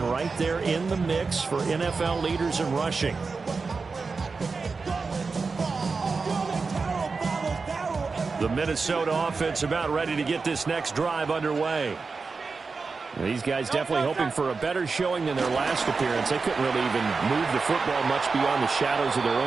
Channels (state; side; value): quieter; left; 4.5 dB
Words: right there in the mix for NFL leaders in rushing. The Minnesota offense about ready to get this next drive underway. These guys definitely hoping for a better showing than their last appearance. They couldn't really even move the football much beyond the shadows of their